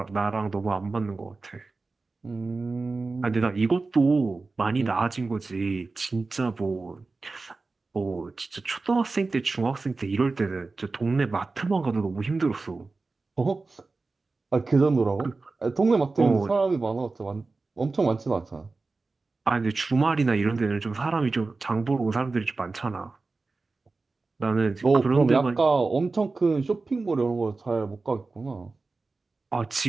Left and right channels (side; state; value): left; quieter; 3.8 dB